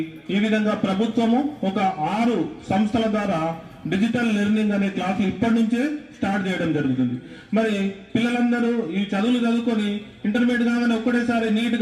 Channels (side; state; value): both; identical; correlation 1.00